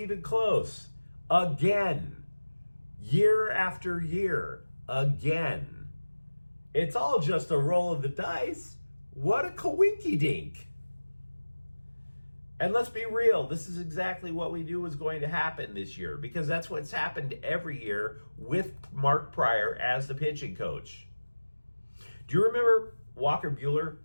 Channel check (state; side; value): inverted; both; correlation -1.00